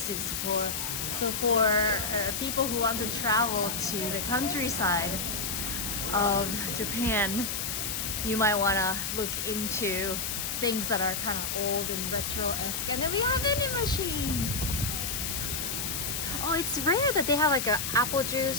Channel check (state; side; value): noise; left; hiss, 2 dB below the sound